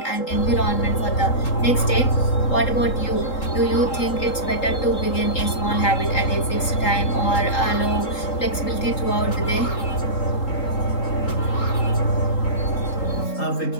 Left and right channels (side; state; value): right; late; 3.8 ms